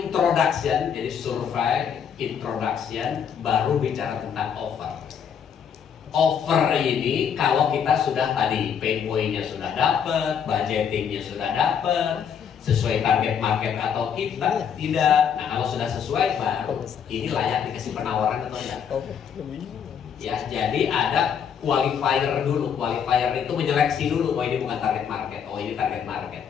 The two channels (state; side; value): quieter; right; 7.7 dB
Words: jadi survei, introduction, baru bicara tentang offer. Offer ini kalau kita sudah tadi pain point-nya sudah dapat, budgetingnya sudah dapat, sesuai target market atau kita tidak. Nah, kalau sudah sesuai baru ini layak dikasih penawaran atau tidak. Ya, jadi ada qualifier dulu. Qualifier itu menyeleksi dulu. Oh, ini bukan target market. Oh, ini target